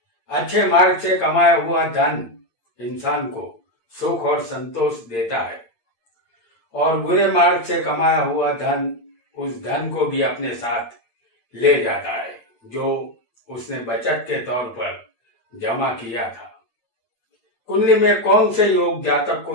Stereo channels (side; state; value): right; late; 8.7 ms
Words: अच्छे मार्ग से कमाया हुआ धन इंसान को सुख और संतोष देता है और बुरे मार्ग से कमाया हुआ धन उस धन को भी अपने साथ ले जाता है जो उसने बचत के तौर पर जमा किया था। कुंडली में कौन से योग जातक